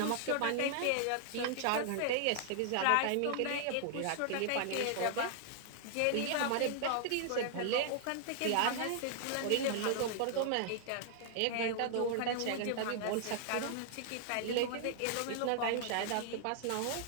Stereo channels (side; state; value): both; different; correlation -0.01